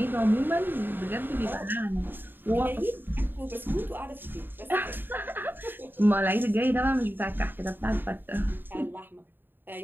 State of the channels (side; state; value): left; late; 0.095 ms